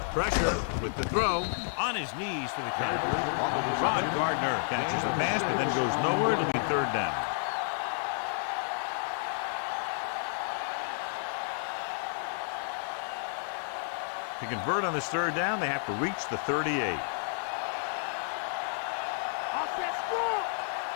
Pressure with the throw on his knees for the catch. Ron Gardner catches the pass, but then goes nowhere. It'll be 3rd down. To convert on this 3rd down, they have to reach the 38.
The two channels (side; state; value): right; silent; digital silence